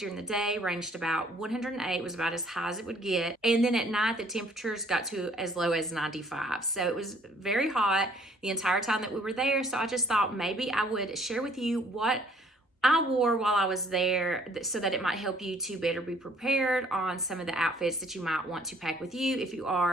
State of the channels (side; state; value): both; normal; correlation 0.59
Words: the day ranged about 108, was about as high as it would get. And then at night, the temperatures got to as low as 95. So it was very hot the entire time that we were there. So I just thought maybe I would share with you what I wore while I was there so that it might help you to better be prepared on some of the outfits that you might want to pack with you if you